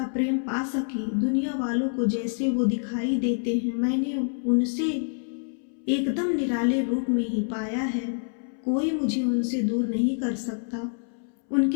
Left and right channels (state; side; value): silent; right; 60 dB below the other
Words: प्रेम पा सकी। दुनिया वालों को जैसे वो दिखाई देते हैं, मैंने उनसे एकदम निराले रूप में ही पाया है। कोई मुझे उनसे दूर नहीं कर सकता।